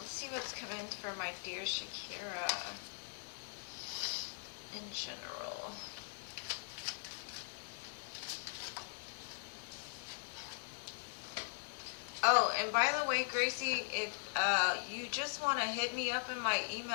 see what's coming for my dear Shakira in general. Oh, and by the way, Gracie, if you just want to hit me up in my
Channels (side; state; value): right; silent; digital silence